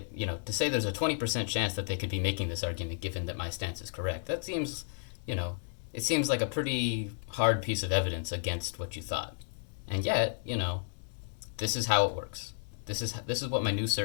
to say there's a 20% chance that they could be making this argument given that my stance is correct, that seems, it seems like a pretty hard piece of evidence against what you thought. And yet, this is how it works. This is what my new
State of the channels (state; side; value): silent; right; digital silence